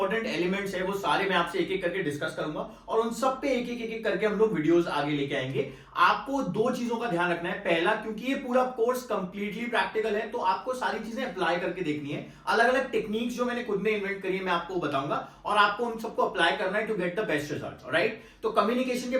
एलिमेंट्स हैं वो सारे मैं आपसे एक एक करके डिस्कस करूंगा और उन सब पे एक एक करके हम लोग वीडियोस आगे लेके आएंगे। आपको दो चीजों का ध्यान रखना है। पहला, क्योंकि ये पूरा कोर्स कंप्लीटली प्रैक्टिकल है तो आपको सारी चीजें अप्लाई करके देखनी है। अलग अलग टेक्निक्स जो मैंने खुद ने इन्वेंट करी है मैं आपको बताऊंगा और आपको उन सबको अप्लाई करना है to get the best result. Right, तो कम्युनिकेशन के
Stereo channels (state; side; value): identical; both; correlation 1.00